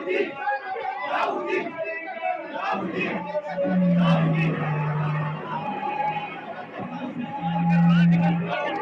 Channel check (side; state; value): both; identical; correlation 1.00